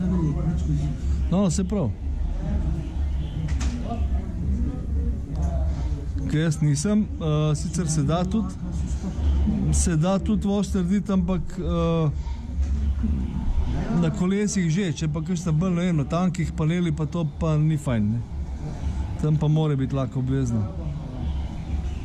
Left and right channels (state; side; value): identical; both; correlation 1.00